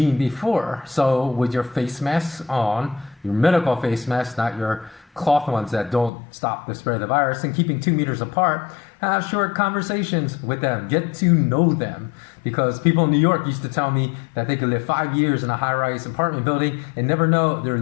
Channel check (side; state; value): right; drops out; at 6.1 s